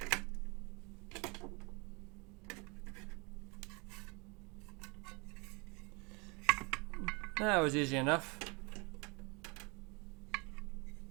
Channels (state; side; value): quieter; left; 29.4 dB